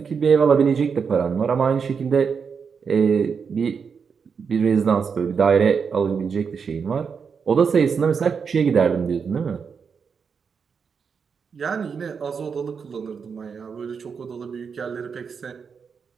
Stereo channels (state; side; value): quieter; left; 6.1 dB